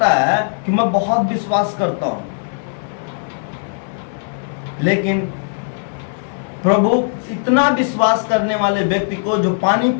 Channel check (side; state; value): right; silent; digital silence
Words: है कि मैं बहुत विश्वास करता हूं, लेकिन प्रभु इतना विश्वास करने वाले व्यक्ति को जो पानी